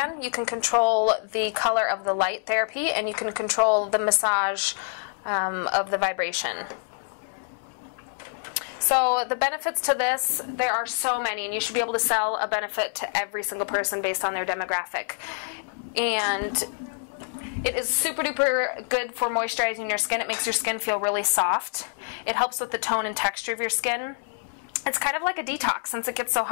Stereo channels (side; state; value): right; silent; 61 dB below the other